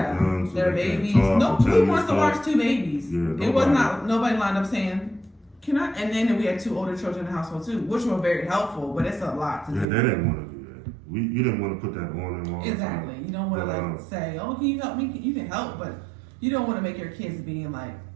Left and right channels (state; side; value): drops out; left; at 9.9 s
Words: their babies. Who wants to watch 2 babies? Yeah, it was not nobody lined up saying, "Can I?" And then we had 2 older children in the household too, which were very helpful, but it's a lot to do. Yeah, they didn't want to do that. You didn't want to put that on them all. Exactly. You don't want to say, "Oh, can you help me?" You can help, but you don't want to make your kids being like